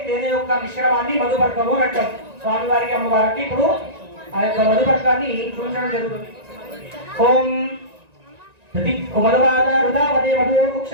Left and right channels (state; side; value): late; left; 1.9 ms